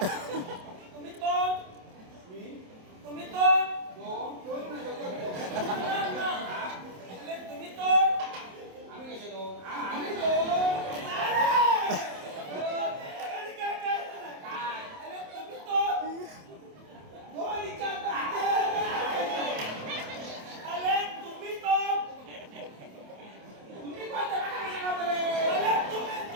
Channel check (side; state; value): left; late; 27 ms